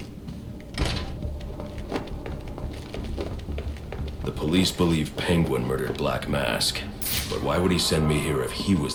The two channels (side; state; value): both; identical; correlation 1.00